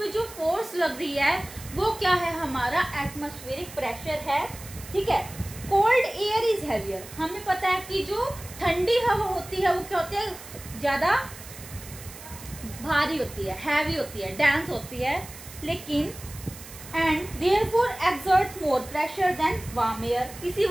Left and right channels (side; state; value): right; noise; hiss, 15 dB below the sound